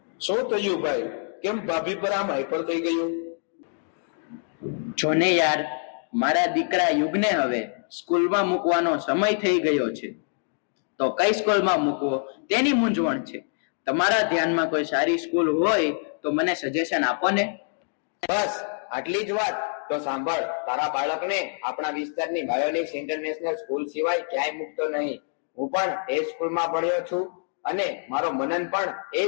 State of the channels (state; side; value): silent; right; 61 dB below the other